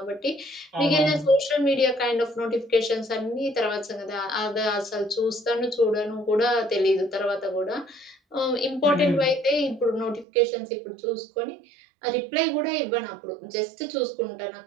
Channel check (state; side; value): drops out; left; at 10.2 s